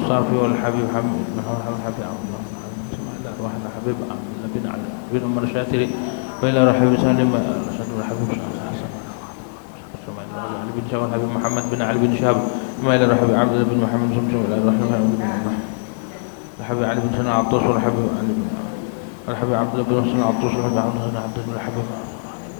والحبيب حمد محمد حبيب عبد الله إلى روح الحبيب بن علي بن عمر الشاتري، وإلى روح حبيب سالم الحبيب حسن، ثم إلى علي بن شهاب الحبيب محمد بن علي بن شهاب، ثم إلى روح حبيب عبد الله بن محمد سمسم، إلى روح الحبيب علي بن سنة عطوس والحبيب علي بن والحبيب عبد الله بن سنة عطوس والحبيب عبد الله الحبيب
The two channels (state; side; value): silent; right; digital silence